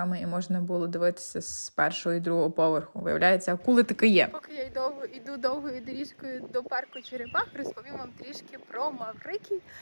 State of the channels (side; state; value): both; inverted; correlation -1.00